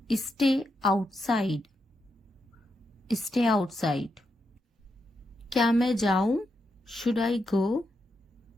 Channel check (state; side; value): normal; both; correlation 0.84